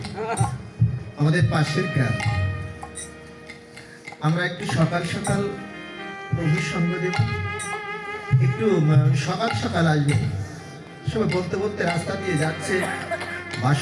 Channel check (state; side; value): identical; both; correlation 1.00